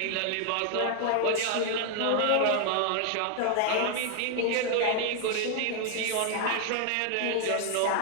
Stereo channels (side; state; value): both; different; correlation 0.00